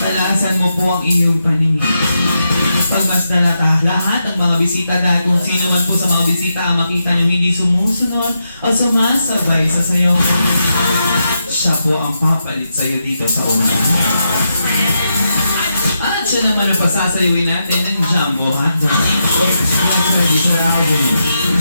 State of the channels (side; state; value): both; inverted; correlation -0.85